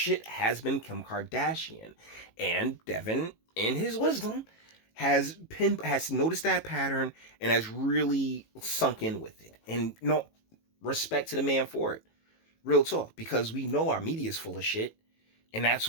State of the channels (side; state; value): right; late; 18 ms